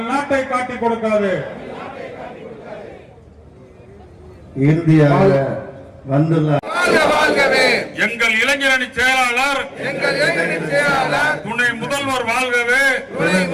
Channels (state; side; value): identical; both; correlation 1.00